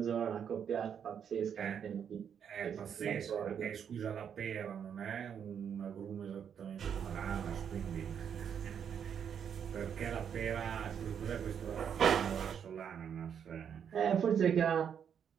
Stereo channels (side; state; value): left; quieter; 8.0 dB